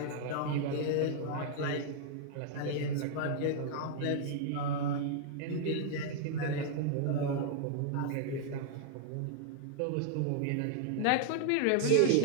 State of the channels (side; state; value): both; different; correlation 0.00